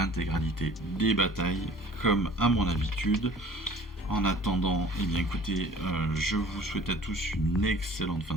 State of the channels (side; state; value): both; normal; correlation 0.49